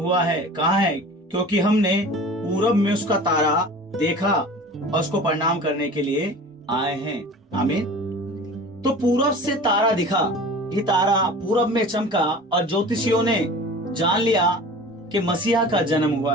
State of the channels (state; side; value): normal; both; correlation 0.40